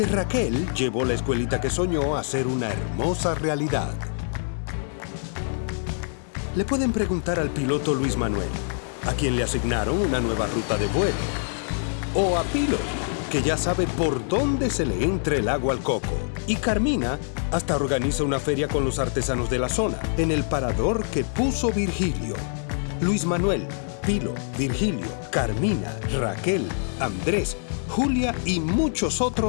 Raquel llevó la escuelita que soñó a ser una hermosa realidad. Le pueden preguntar al piloto Luis Manuel, a quien le asignaron una nueva ruta de vuelo. O a Pilo, que ya sabe por dónde se le entra el agua al coco. Y Carmina hasta organiza una feria con los artesanos de la zona, en el parador que puso Virgilio. Luis Manuel, Pilo, Virgilio, Carmina, Raquel, Andrés, Julia y muchos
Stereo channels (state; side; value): silent; right; digital silence